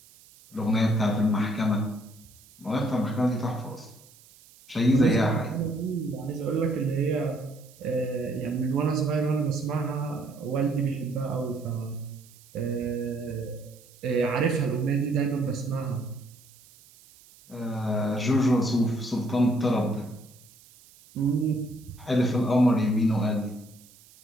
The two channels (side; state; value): right; noise; hiss, 25 dB below the sound